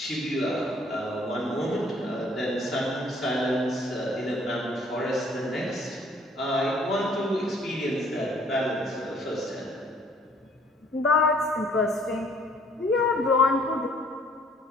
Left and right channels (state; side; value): normal; both; correlation 0.60